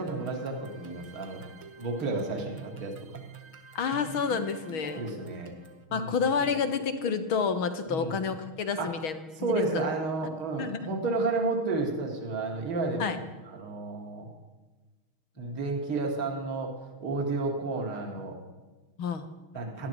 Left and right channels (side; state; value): right; late; 6.3 ms